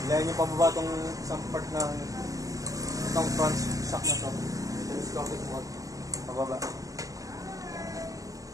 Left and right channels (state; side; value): late; left; 0.16 ms